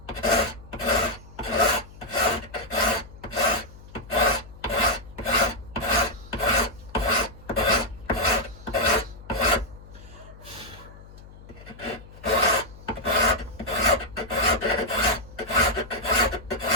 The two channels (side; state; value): left; noise; hum, 19 dB below the sound